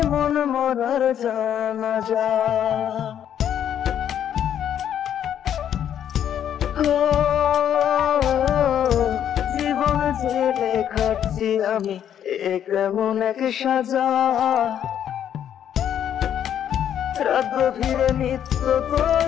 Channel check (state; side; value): quieter; right; 9.7 dB